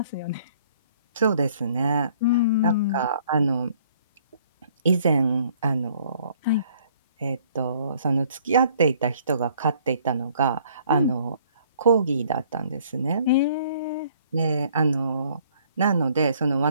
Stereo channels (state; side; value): inverted; both; correlation -0.60